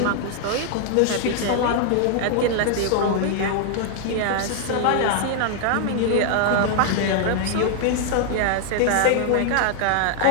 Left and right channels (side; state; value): both; different; correlation 0.00